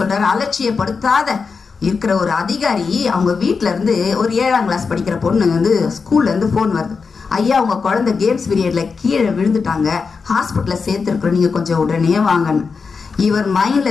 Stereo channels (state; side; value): quieter; right; 5.1 dB